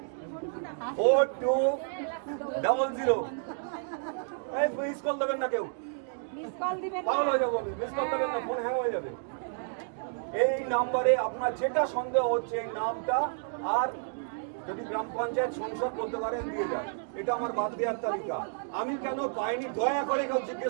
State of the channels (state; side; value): silent; left; digital silence